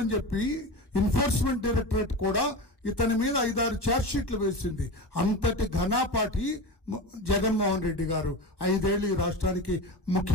చెప్పి ఎన్ఫోర్స్మెంట్ డైరెక్టరేట్ కూడా ఇతని మీద 5-6 ఛార్జ్షీట్లు వేసింది. అంతటి ఘనాపాటి జగన్మోహన్ రెడ్డి గారు 5 ఏళ్ళు ఈ రాష్ట్రానికి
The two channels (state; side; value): late; right; 1.2 ms